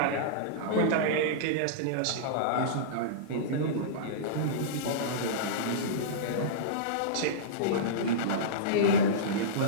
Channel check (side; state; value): both; different; correlation -0.05